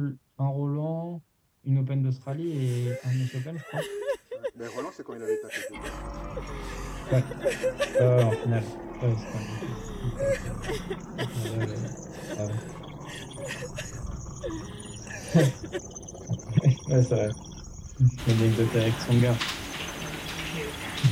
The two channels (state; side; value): identical; both; correlation 1.00